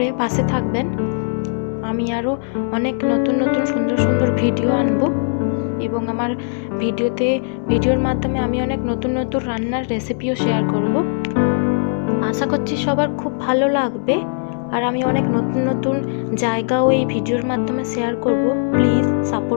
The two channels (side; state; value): right; silent; digital silence